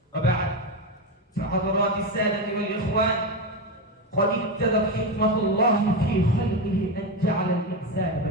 وبعد، فحضرات السادة والإخوان، قد ابتدت حكمة الله في خلقه أن جعل الإنسان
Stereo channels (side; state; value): both; normal; correlation 0.13